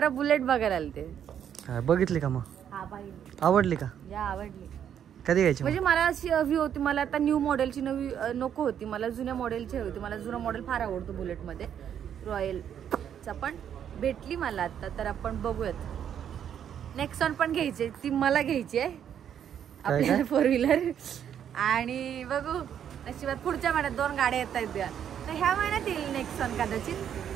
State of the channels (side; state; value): left; quieter; 9.1 dB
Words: बुलेट बघायला आले ते. बघितली का मग? हा पाहिजे. आवडली का? या आवडली. कधी घ्यायची? म्हणजे मला अशी हवी होती, मला आता न्यू मॉडेलची नवी नको होती, मला जुन्या मॉडेलची हवी होती. मला जुना मॉडेल फार आवडतो बुलेट मध्ये, रॉयलचा. पण भेटली मला आता, तर आपण बघूयात. नेक्सॉन पण घ्यायची, ती मला घ्यायची आहे आपल्याला 4 व्हीलर. आणि बघू नशिबात पुढच्या महिन्यात 2 गाड्या येत आहेत. तर ह्या महिन्यात येईल नेक्सॉन कदाचित,